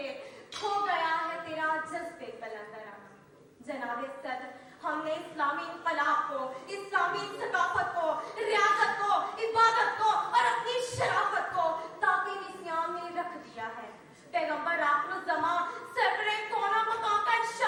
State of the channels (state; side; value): identical; both; correlation 1.00